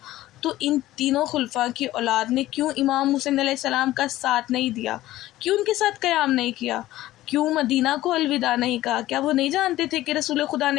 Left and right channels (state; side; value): quieter; right; 15.6 dB